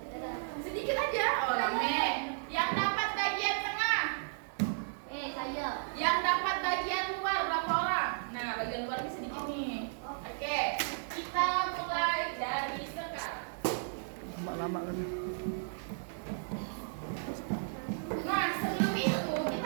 Sedikit aja. Oh, rame. Yang dapat bagian tengah? Saya. Yang dapat bagian luar berapa orang? Nah, bagian luar ini sedikit nih. Oke, kita mulai dari sekarang. Lama kan. Nah, sebelum itu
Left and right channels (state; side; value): silent; left; 55 dB below the other